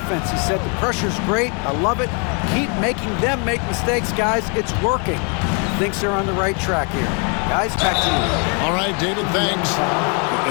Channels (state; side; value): quieter; right; 36.8 dB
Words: He said, the pressure's great, I love it. Keep making them make mistakes, guys. It's working. Thinks they're on the right track here. Guys, back to you. All right, David, thanks.